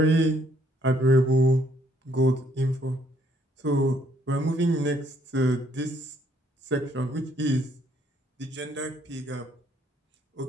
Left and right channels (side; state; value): both; normal; correlation 0.67